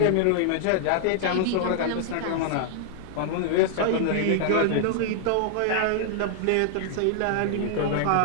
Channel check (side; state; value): both; different; correlation 0.00